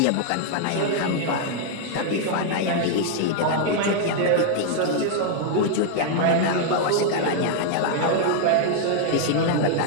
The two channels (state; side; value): different; both; correlation 0.00